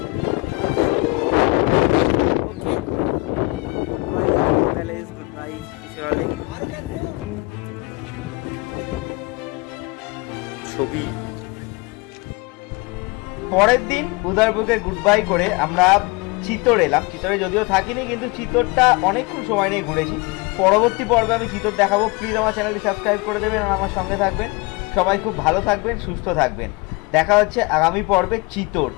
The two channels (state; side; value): quieter; right; 26.8 dB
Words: Okay, good bye palace, good bye Pichola lake. ছবি। পরের দিন উদয়পুরকে গুড বাই করে আমরা চিতোর এলাম। চিতোরে যদিও থাকিনি, কিন্তু চিতোরটা অনেকক্ষণ সময় নিয়ে ঘুরেছি। পরবর্তী পর্বে আমি চিতোর দেখাবো। প্লিজ আমার চ্যানেলটি সাবস্ক্রাইব করে দেবেন আর আমার সঙ্গে থাকবেন। সবাই খুব ভালো থাকবেন, সুস্থ থাকবেন। দেখা হচ্ছে আগামী পর্বে চিতোর।